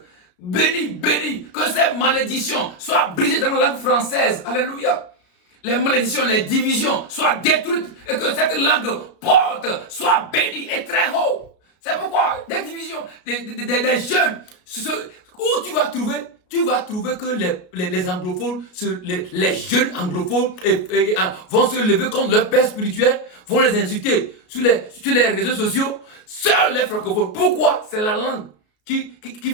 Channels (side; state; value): right; late; 33 ms